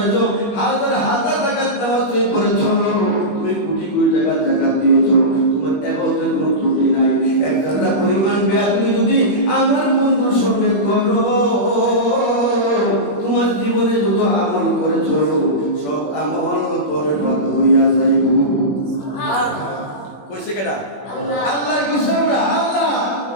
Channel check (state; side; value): late; right; 21 ms